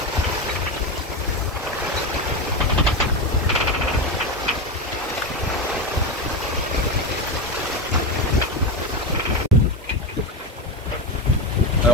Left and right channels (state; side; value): normal; both; correlation 0.17